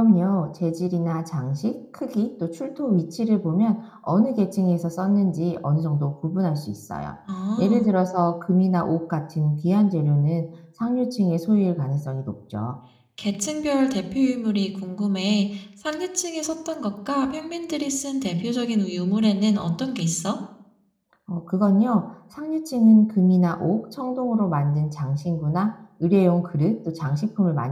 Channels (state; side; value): identical; both; correlation 1.00